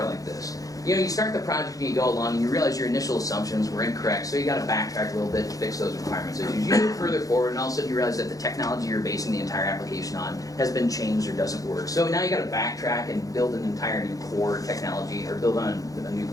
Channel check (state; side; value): late; right; 0.17 ms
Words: like this. You know, you start the project and you go along and you realize your initial assumptions were incorrect, so you got to backtrack a little bit to fix those requirements issues. You move further forward and all of a sudden you realize that the technology you're basing the entire application on has been changed or doesn't work. So now you got to backtrack and build an entire new core technology or build on a new